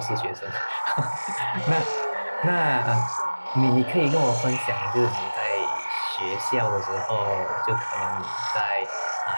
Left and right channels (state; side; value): inverted; both; correlation -1.00